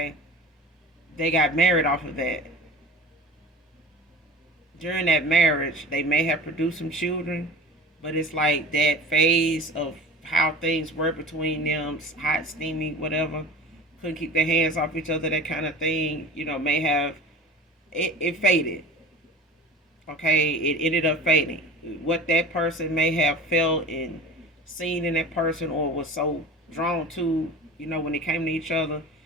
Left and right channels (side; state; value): both; normal; correlation 0.36